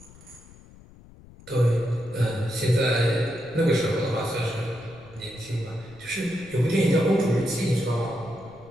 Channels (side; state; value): left; noise; rumble, 22 dB below the sound